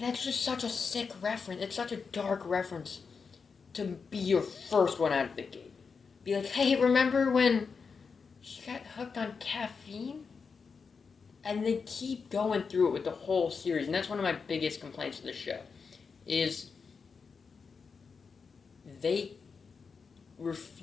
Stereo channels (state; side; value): quieter; right; 5.3 dB